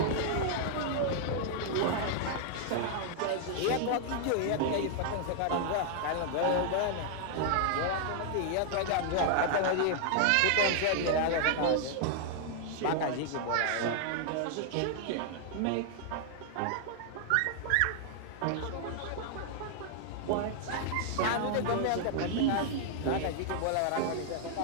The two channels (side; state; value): both; different; correlation -0.01